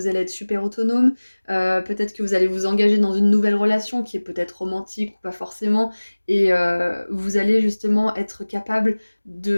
allez être super autonome. Peut-être que vous allez vous engager dans une nouvelle relation qui est peut-être romantique ou pas forcément. Et vous allez justement être capable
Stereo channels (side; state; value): both; inverted; correlation -1.00